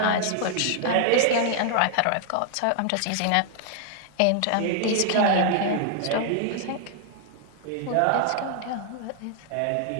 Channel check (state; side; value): different; both; correlation 0.00